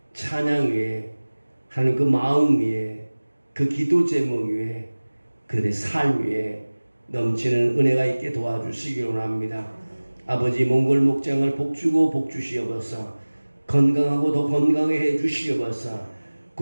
찬양 위에, 하나님 그 마음 위에, 그 기도 제목 위에, 그들의 삶 위에 넘치는 은혜가 있게 도와주시기 원합니다. 아버지, 몽골 목장을 복주고 복주시옵소서. 건강하고 더 건강하게 해주시옵소서.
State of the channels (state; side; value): inverted; both; correlation -1.00